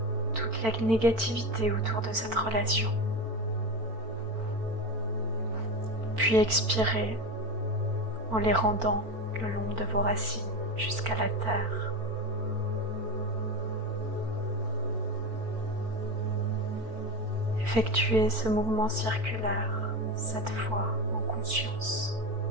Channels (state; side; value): late; left; 4.5 ms